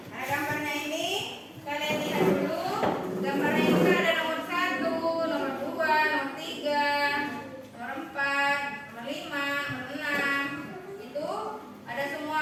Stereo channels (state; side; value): identical; both; correlation 1.00